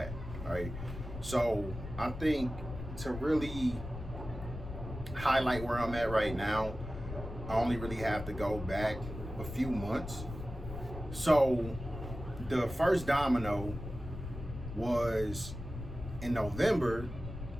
right? So I think to really highlight where I'm at right now, I only really have to go back a few months. So the first domino was in November,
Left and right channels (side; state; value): left; noise; rumble, 9 dB below the sound